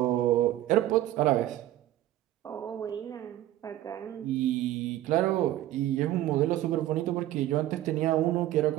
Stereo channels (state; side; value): quieter; left; 13.9 dB